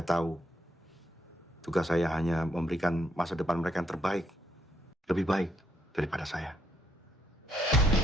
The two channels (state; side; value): normal; both; correlation 0.75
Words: tahu, tugas saya hanya memberikan masa depan mereka yang terbaik. Lebih baik daripada saya.